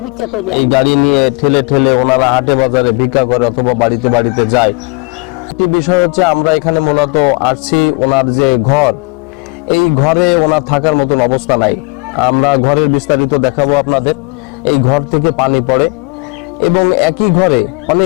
এই গাড়ি নিয়ে ঠেলে ঠেলে ওনারা হাটে বাজারে ভিক্ষা করে অথবা বাড়িতে বাড়িতে যায়। একটি বিষয় হচ্ছে, আমরা এখানে মূলত আসছি ওনার যে ঘর, এই ঘরে ওনার থাকার মতন অবস্থা নাই। আমরা ঘরের বিস্তারিত দেখাবো আপনাদের। এই ঘর থেকে পানি পড়ে এবং একই ঘরে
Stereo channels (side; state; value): right; quieter; 30.7 dB